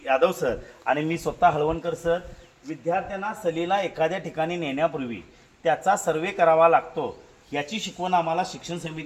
यादव सर आणि मी स्वतः हळवणकर सर। विद्यार्थ्यांना सहलीला एखाद्या ठिकाणी नेण्यापूर्वी त्याचा सर्वे करावा लागतो याची शिकवण आम्हाला शिक्षण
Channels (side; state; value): both; identical; correlation 1.00